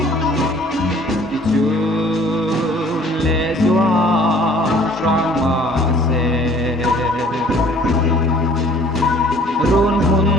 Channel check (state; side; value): normal; both; correlation 0.54